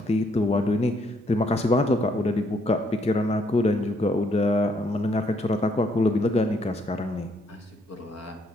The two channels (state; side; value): normal; both; correlation 0.70